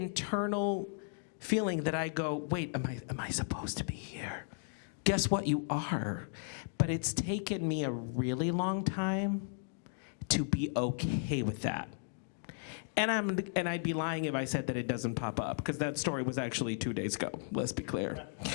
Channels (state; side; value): silent; right; digital silence